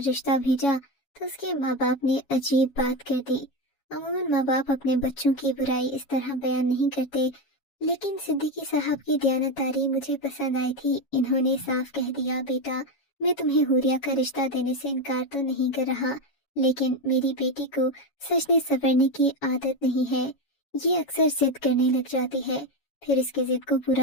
رشتہ بھیجا تو اس کے ماں باپ نے عجیب بات کر دی۔ عموماً ماں باپ اپنے بچوں کی برائی اس طرح بیان نہیں کرتے، لیکن صدیقی صاحب کی دیانتداری مجھے پسند آئی تھی۔ انہوں نے صاف کہہ دیا، بیٹا میں تمہیں حوریہ کا رشتہ دینے سے انکار تو نہیں کر رہا، لیکن میری بیٹی کو سجنے سنورنے کی عادت نہیں ہے۔ یہ اکثر ضد کرنے لگ جاتی ہے، پھر اس کے ضد کو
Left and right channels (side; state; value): right; late; 7.2 ms